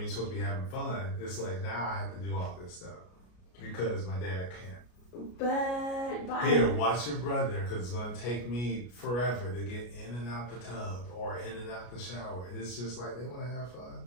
supposed to be having fun. It's like, now I have to do all this stuff because my dad can't. But here, watch your brother, because it's going to take me forever to get in and out the tub or in and out the shower. It's just like they want to have fun.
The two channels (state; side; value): late; right; 33 ms